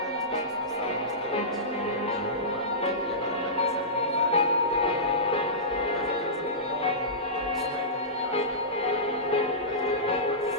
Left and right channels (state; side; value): normal; both; correlation -0.19